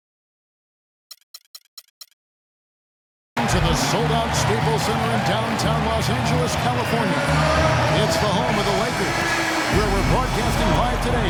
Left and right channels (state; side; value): identical; both; correlation 1.00